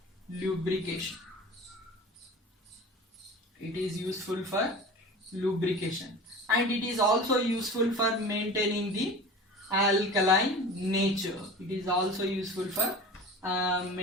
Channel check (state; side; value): normal; both; correlation 0.36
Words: lubrication. It is useful for lubrication. And it is also useful for maintaining the alkaline nature. It is also useful for